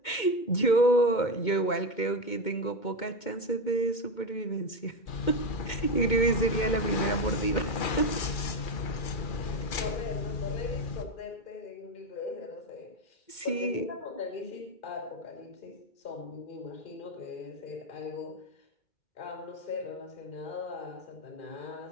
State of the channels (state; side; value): late; right; 2.1 ms